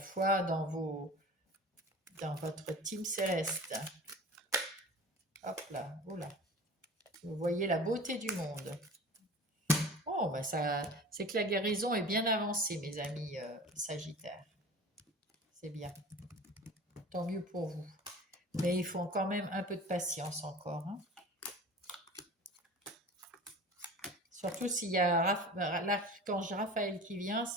dans votre team céleste. Hop là, oh là. Vous voyez la beauté du monde. Oh, bah ça, c'est que la guérison est bien avancée, mes amis Sagittaires. C'est bien. Tant mieux pour vous. Mais il faut quand même un peu de patience encore, hein. Surtout s'il y a l'archange Raphaël qui vient,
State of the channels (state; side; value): normal; both; correlation 0.39